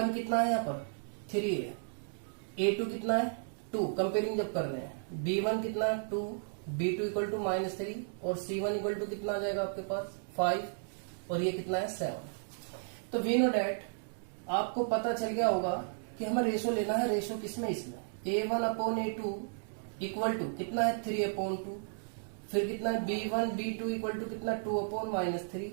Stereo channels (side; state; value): left; silent; digital silence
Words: कितना है यहाँ पर 3 है, A2 कितना है 2, कंपेयरिंग जब कर रहे हैं, B1 कितना है 2, B2 इक्वल टू -3 और C1 इक्वल टू कितना आ जाएगा आपके पास 5 और ये कितना है 7। तो वी नो डैट आपको पता चल गया होगा कि हमें रेशो लेना है। रेशो किसमें, इसमें A1 upon A2 equal to कितना है 3 अपॉन 2, फिर कितना है B1 B2 इक्वल टू कितना 2 upon -3